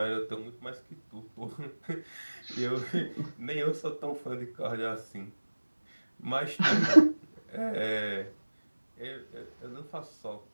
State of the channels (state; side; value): inverted; both; correlation -1.00